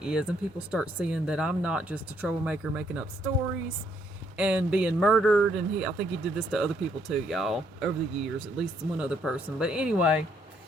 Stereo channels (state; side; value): normal; both; correlation 0.70